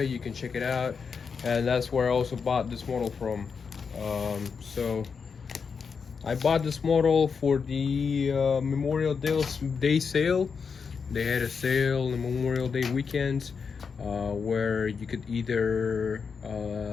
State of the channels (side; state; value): right; quieter; 5.8 dB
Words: You can check it out, and that's where I also bought this model from. So I bought this model for the Memorial Day sale. They had a sale on the Memorial Day weekend where you could either